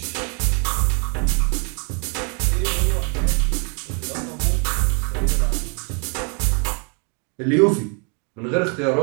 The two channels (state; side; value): quieter; left; 36.9 dB